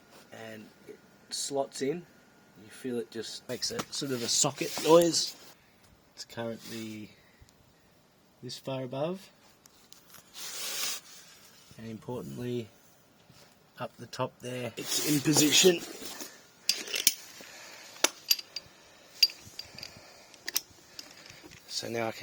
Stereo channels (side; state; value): both; identical; correlation 1.00